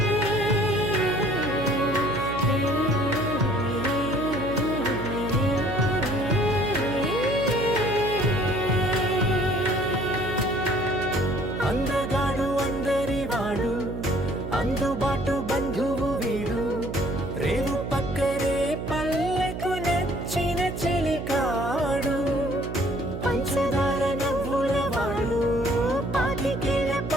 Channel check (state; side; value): noise; right; hum, 6 dB below the sound